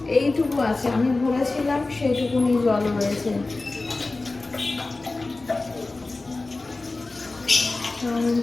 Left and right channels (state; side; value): quieter; right; 3.3 dB